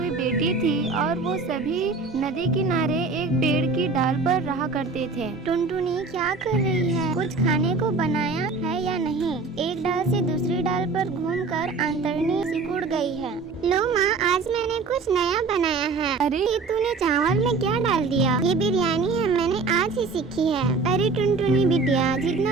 बेटी थी और वो सभी नदी किनारे एक पेड़ की डाल पर रहा करते थे। टुनटुनी क्या कर रही है? कुछ खाने को बनाया है या नहीं? एक डाल से दूसरी डाल पर घूमकर अंतड़नी सिकुड़ गई है। लो माँ, आज मैंने कुछ नया बनाया है। अरे ये तूने चावल में क्या डाल दिया? ये बिरयानी है, मैंने आज ही सीखी है। अरे टुनटुनी बिटिया,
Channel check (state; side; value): quieter; left; 4.1 dB